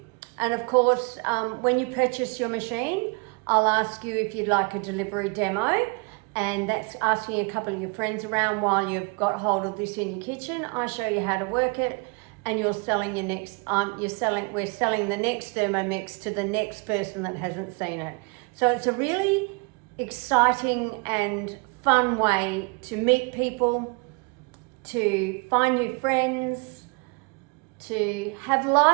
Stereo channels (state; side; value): quieter; left; 32.2 dB